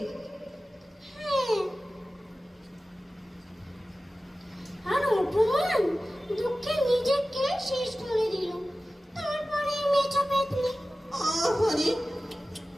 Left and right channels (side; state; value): both; normal; correlation 0.96